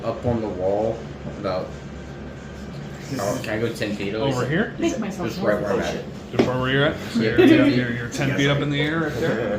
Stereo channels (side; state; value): both; identical; correlation 1.00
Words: up on the wall about. Can I go 10 feet Over here? Make myself Just more right where I'm Oh, at. shit. Just where you're at? So Yeah. you're 10 feet up in the air right